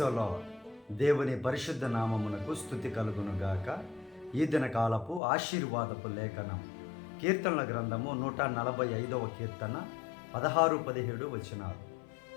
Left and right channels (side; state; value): right; drops out; at 5.2 s